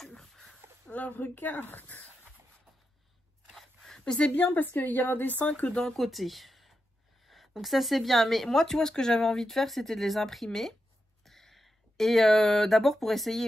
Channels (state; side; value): normal; both; correlation 0.87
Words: Là, regarde. Mais c'est bien parce qu'il y a un dessin que d'un côté. Donc ça, c'est bien. Mais moi, tu vois, ce que j'avais envie de faire, c'était de les imprimer. Et d'abord pour